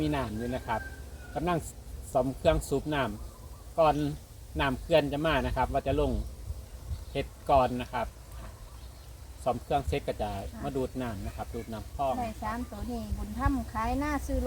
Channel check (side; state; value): both; identical; correlation 1.00